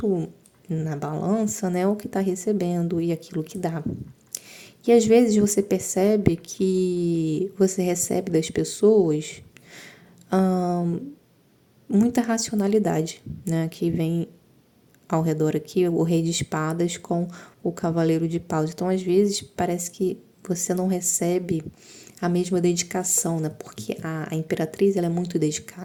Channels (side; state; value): both; identical; correlation 1.00